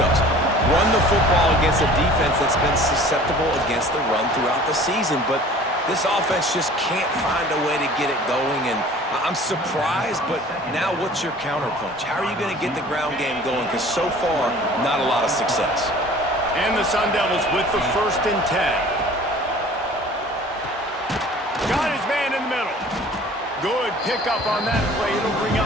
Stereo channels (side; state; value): both; normal; correlation 0.47